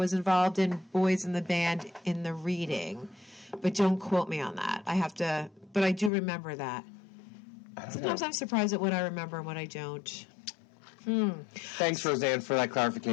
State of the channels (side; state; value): right; drops out; at 6.1 s